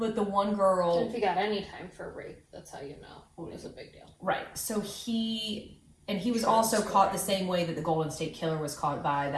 the one girl, If you got any time for rape, that's how you know it was a big deal. right? So he was also caught the same way that the Golden State Killer was caught by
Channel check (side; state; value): both; identical; correlation 1.00